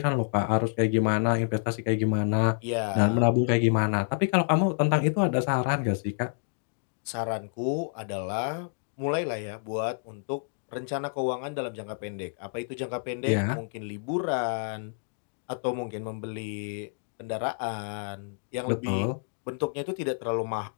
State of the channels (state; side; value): silent; right; digital silence